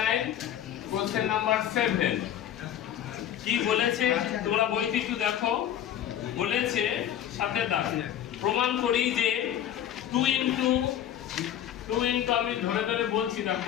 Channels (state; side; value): quieter; right; 10.6 dB